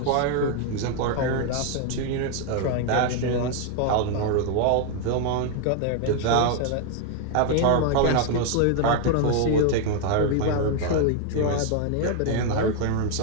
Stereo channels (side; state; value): both; different; correlation 0.00